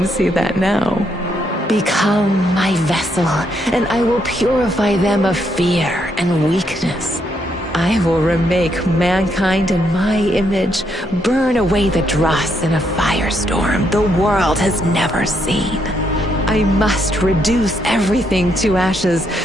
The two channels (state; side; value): normal; both; correlation 0.76